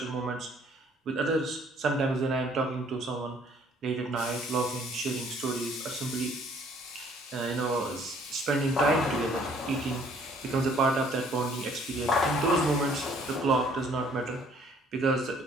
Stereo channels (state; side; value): normal; both; correlation 0.60